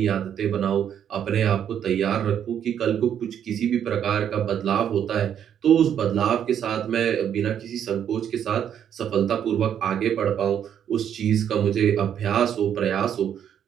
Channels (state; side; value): quieter; left; 9.2 dB